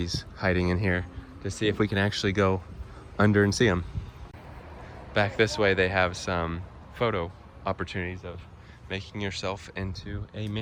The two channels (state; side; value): identical; both; correlation 1.00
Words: hiding in here, to see if we can actually go under and see them. Back this way they have some photo opportunities of making yourself into a